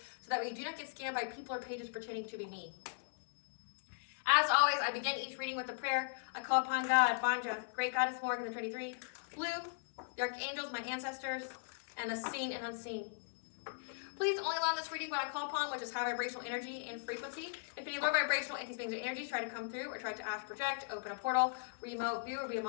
so that way you do not get scammed by people or pages pretending to be me. As always, I begin each reading with a prayer. I call upon God, Banja, Great Goddess Morgan, the Trinity, Blue, the Archangels, my ancestors, and the seen and unseen. Please only allow this reading what I call upon, which is high vibrational energy and frequency. If any low vibrational entities, beings, or energies try to come through or try to astral project, open a portal, remote view, or be a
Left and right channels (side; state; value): right; silent; 52 dB below the other